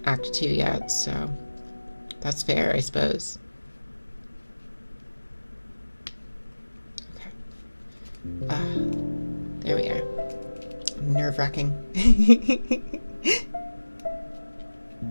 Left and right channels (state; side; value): inverted; both; correlation -1.00